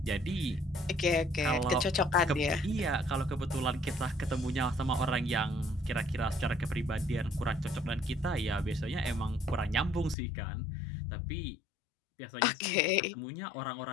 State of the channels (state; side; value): drops out; right; at 10.2 s